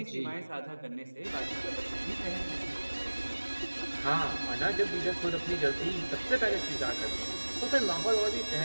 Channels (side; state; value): both; inverted; correlation -1.00